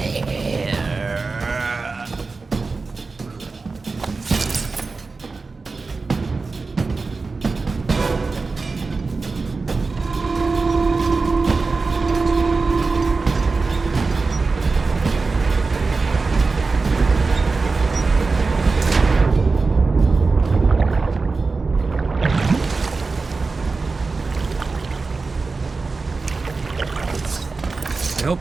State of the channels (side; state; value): left; quieter; 4.1 dB